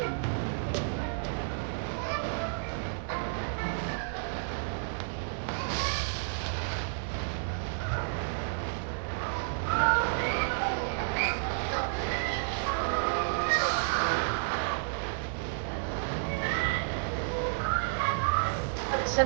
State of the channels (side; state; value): left; silent; digital silence